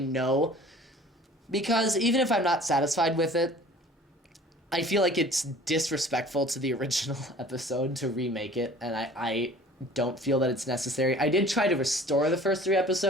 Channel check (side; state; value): both; normal; correlation 0.48